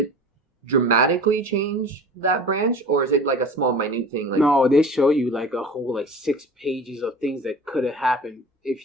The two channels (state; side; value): normal; both; correlation 0.38